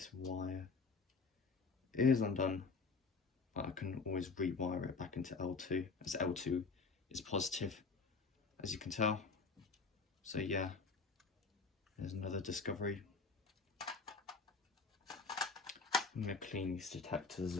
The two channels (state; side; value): quieter; right; 4.6 dB